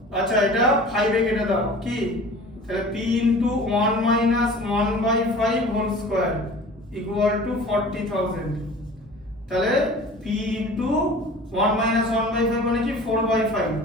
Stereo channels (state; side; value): normal; both; correlation 0.42